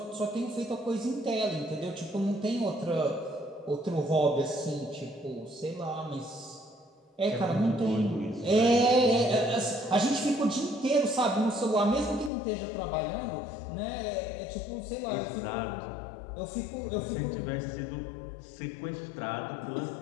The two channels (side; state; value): right; drops out; at 12.3 s